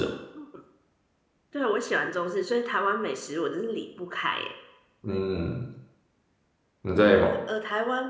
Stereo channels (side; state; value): both; identical; correlation 1.00